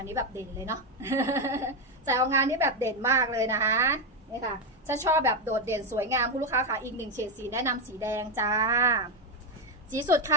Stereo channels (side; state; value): both; normal; correlation 0.06